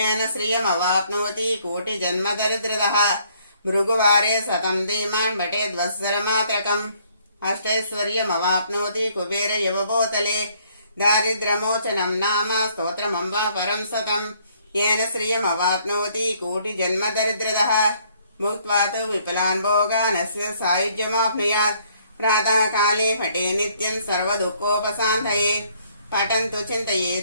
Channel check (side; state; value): both; inverted; correlation -0.65